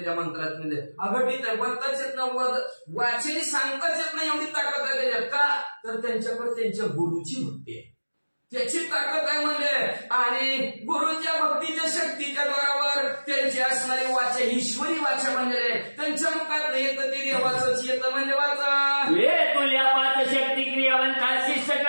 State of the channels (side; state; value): both; inverted; correlation -1.00